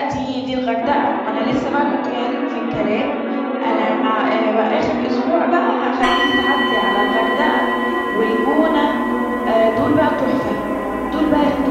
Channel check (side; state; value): both; identical; correlation 1.00